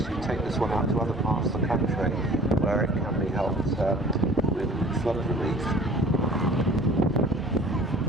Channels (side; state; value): both; normal; correlation 0.49